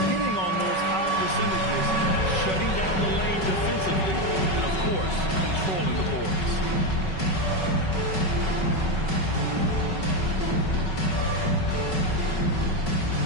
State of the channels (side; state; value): right; late; 5.3 ms